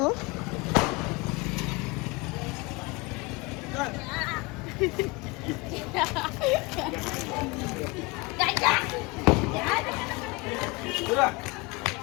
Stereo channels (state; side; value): quieter; right; 25.3 dB